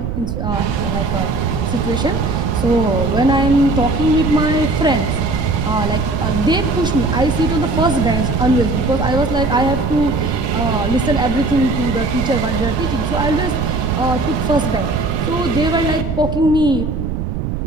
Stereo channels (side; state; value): right; noise; rumble, 3 dB below the sound